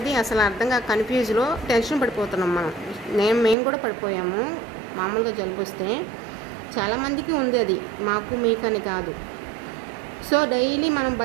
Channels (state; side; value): drops out; left; at 3.6 s